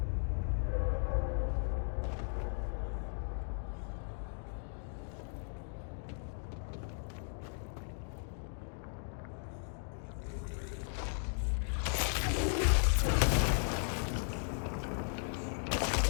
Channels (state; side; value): silent; right; digital silence